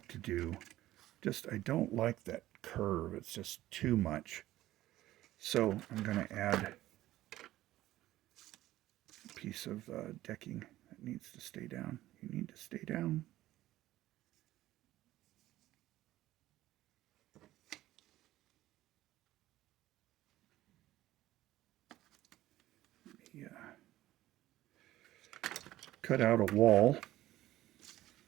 to do, I don't like that curve. It's just too much. So I'm going to add a piece of decking that needs to stay down. You need to stay down. Yeah. Cut out a wall.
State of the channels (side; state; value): left; quieter; 15.2 dB